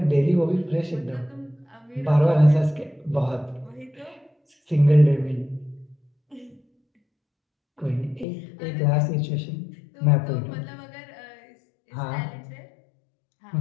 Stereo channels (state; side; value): drops out; right; at 8.2 s